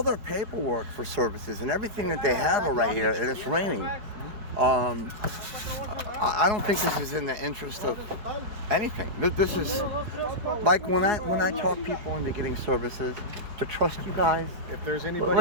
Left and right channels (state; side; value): late; left; 4.5 ms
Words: their paperwork for services and everything that they have are right here, and it's raining. I don't think this is in the interest of anything. This is like when I talk people into getting services, to trust you guys. If there's